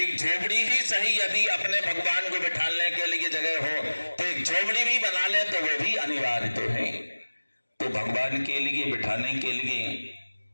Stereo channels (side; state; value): both; inverted; correlation -1.00